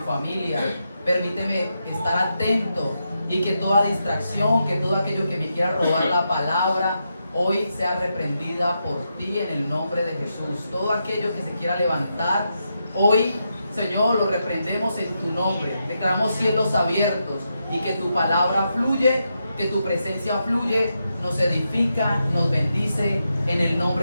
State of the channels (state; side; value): inverted; both; correlation -0.85